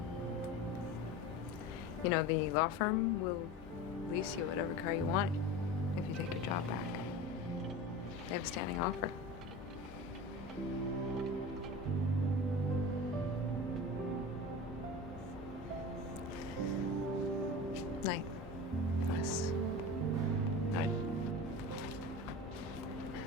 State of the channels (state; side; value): noise; right; hum, 20 dB below the sound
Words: You know, the law firm will lease you whatever car you want if you take your job back. They have a standing offer. Night. Yes. Night.